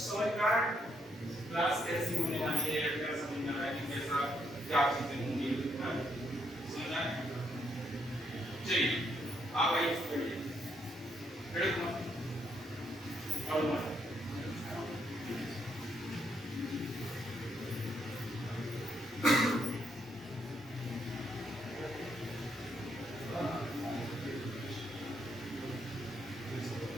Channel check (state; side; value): normal; both; correlation 0.75